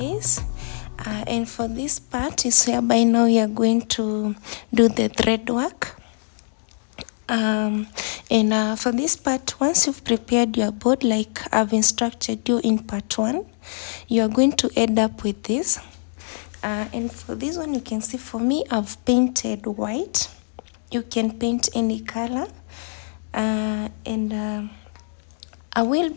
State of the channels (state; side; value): silent; right; digital silence